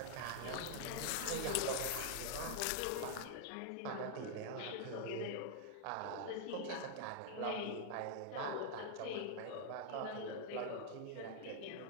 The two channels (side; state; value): both; different; correlation 0.00